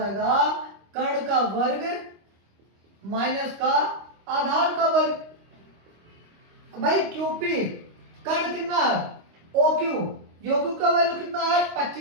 कर्ण का वर्ग माइनस का आधार का वर्ग। भाई क्यूपी कर्ण कितना है, ओक्यू, योक्यू का वैल्यू कितना है,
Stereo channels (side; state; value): left; late; 25 ms